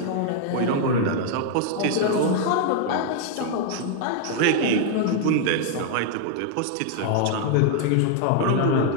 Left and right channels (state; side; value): different; both; correlation 0.00